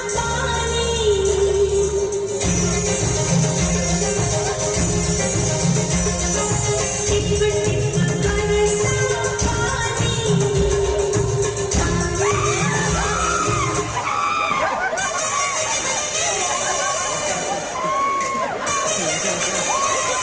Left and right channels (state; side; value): identical; both; correlation 1.00